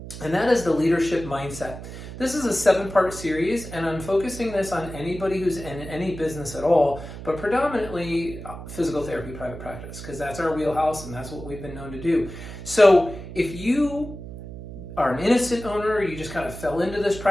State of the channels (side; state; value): right; noise; hum, 11 dB below the sound